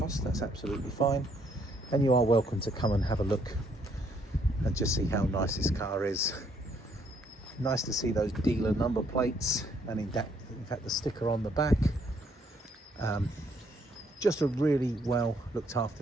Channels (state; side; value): normal; both; correlation 0.69